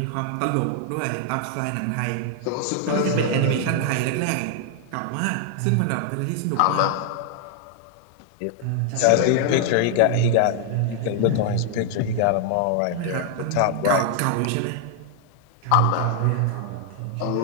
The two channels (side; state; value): both; different; correlation 0.00